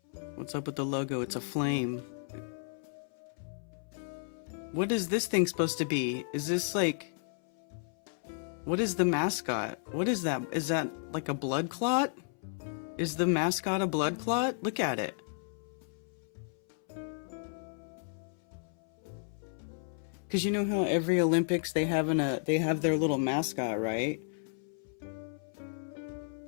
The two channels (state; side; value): silent; right; 56 dB below the other